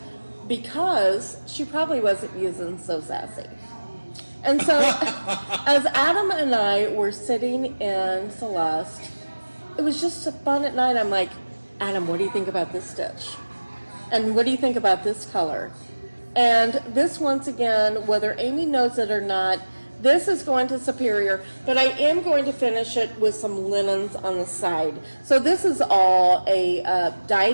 because she probably wasn't using Sew Sassy. And so as Adam and I were sitting in Celeste, it was just fun at night. I'm like, Adam, what do you think about this stitch? And what do you think about this color? And this, once again, whether Amy knows it or not, this is going to Superior, but I am going to finish it with some linens on the side. So this is all a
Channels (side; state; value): both; inverted; correlation -1.00